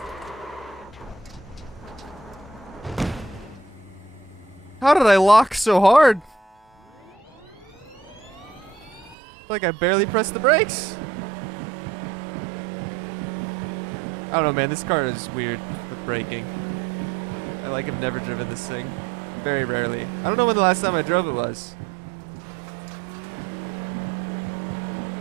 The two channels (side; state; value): left; drops out; at 9.2 s